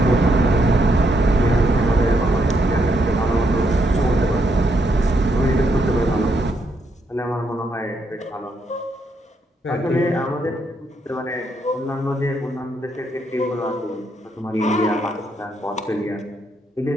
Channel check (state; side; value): normal; both; correlation 0.77